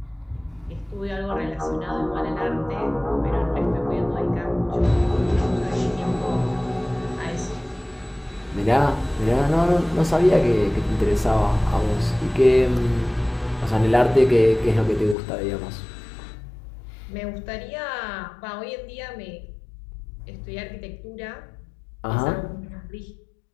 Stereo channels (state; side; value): drops out; right; at 15.2 s